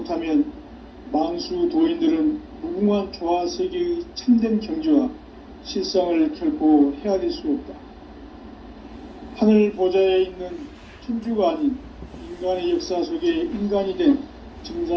만수 도인들은 무궁한 조화세계의 참된 경지와 실상을 결코 헤아릴 수 없다. 하늘 보좌에 있는 천주가 아닌 인간의 역사 속에 인간이 된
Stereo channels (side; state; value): both; identical; correlation 1.00